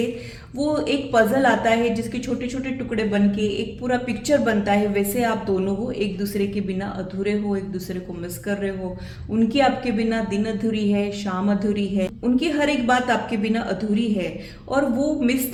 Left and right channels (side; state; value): both; identical; correlation 1.00